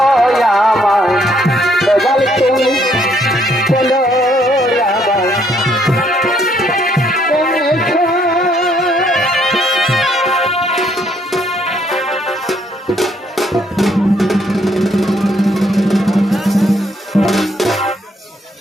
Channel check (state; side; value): normal; both; correlation 0.69